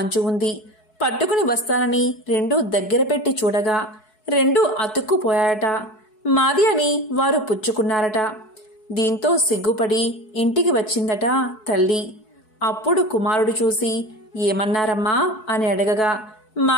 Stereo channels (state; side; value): late; right; 4.7 ms